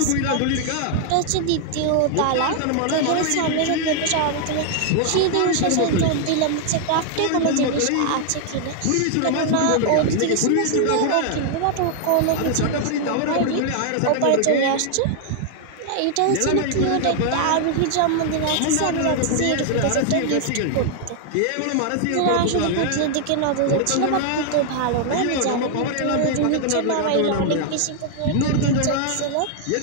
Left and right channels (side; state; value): both; different; correlation 0.00